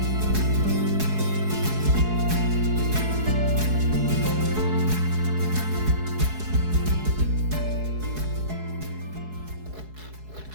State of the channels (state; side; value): late; left; 4.7 ms